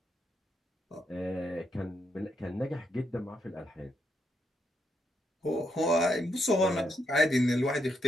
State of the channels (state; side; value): normal; both; correlation 0.79